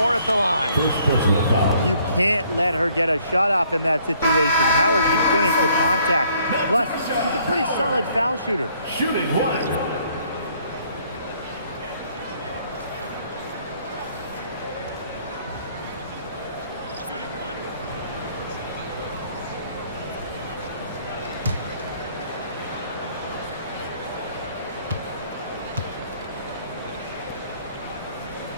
at the line. First personal foul. You can't let her get a shot off in that situation. Howard can finish with contact. Plus, she's a pretty solid foul shooter. Shooting 1.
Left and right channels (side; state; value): both; inverted; correlation -0.63